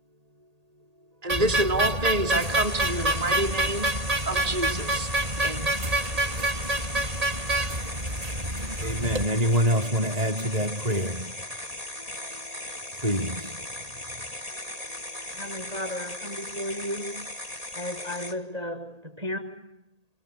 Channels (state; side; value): late; left; 1.8 ms